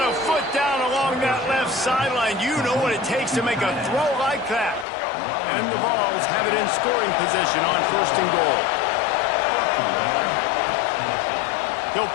a foot down along that left sideline. You know what it takes to make a throw like that. And the Vols have it in scoring position on first and goal. He'll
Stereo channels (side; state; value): right; drops out; at 4.9 s